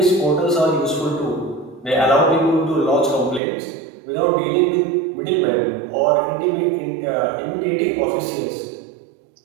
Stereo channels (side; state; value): left; drops out; at 3.4 s